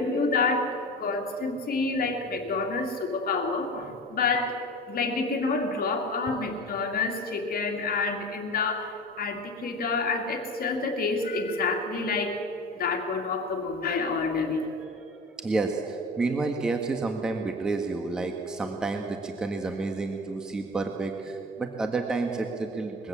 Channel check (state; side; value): normal; both; correlation 0.34